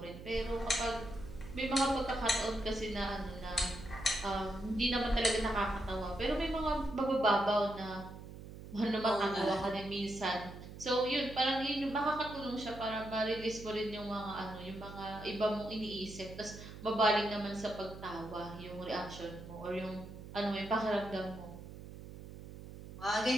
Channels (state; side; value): noise; right; hum, 13 dB below the sound